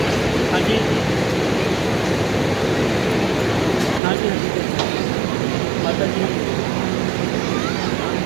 हाँ जी, हाँ जी, माता जी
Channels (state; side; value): drops out; left; at 4.0 s